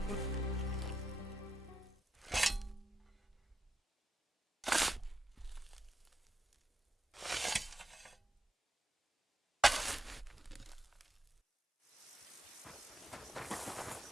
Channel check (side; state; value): both; normal; correlation 0.85